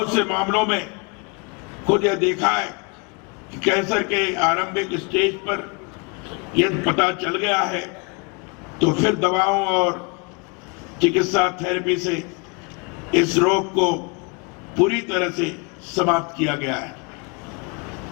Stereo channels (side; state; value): right; quieter; 32.3 dB